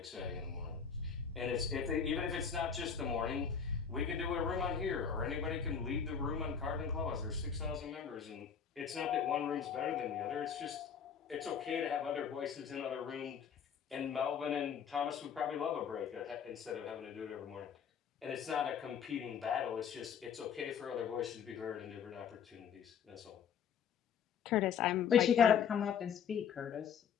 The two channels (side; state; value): right; quieter; 7.2 dB